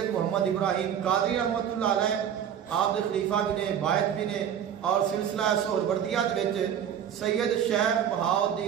محمد ابراہیم قادری رحمت اللہ علیہ آپ دے خلیفہ بھی نے، باعث بھی نے، اور سلسلہ سہروردیہ دے وچ سید شیخ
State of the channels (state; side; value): quieter; left; 9.1 dB